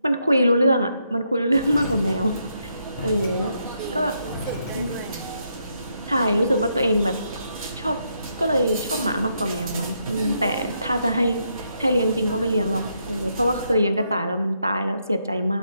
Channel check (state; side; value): inverted; both; correlation -0.78